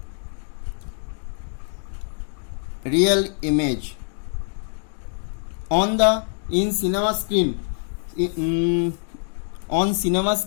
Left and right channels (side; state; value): right; silent; digital silence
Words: real image. In cinema screen, on cinema